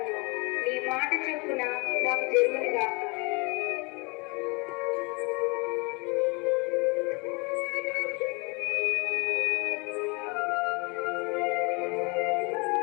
నీ మాట చొప్పున నాకు జరుగునుగాక.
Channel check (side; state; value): right; quieter; 29.8 dB